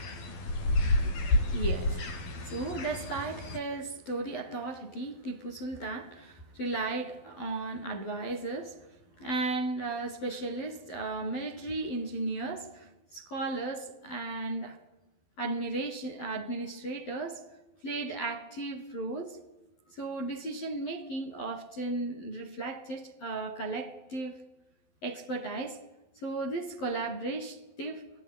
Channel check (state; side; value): late; right; 12 ms